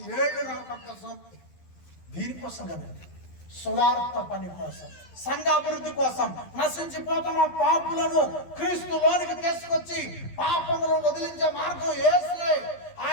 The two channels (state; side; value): late; right; 12 ms